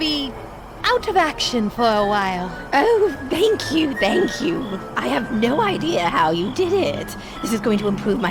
out of action for a while. Oh, thank you, thank you. I have no idea how you did it. This is going to improve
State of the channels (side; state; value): both; identical; correlation 1.00